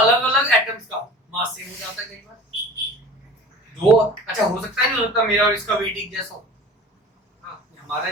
एटम्स का मास सेम हो जाता है कई बार। दो, अच्छा हो सकता है, नहीं हो सकता मेरा और इसका वेट एक जैसा हो, हमारा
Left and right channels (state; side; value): normal; both; correlation 0.41